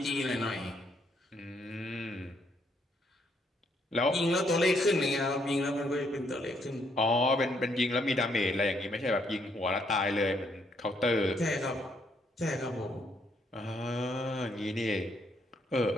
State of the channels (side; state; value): both; normal; correlation 0.72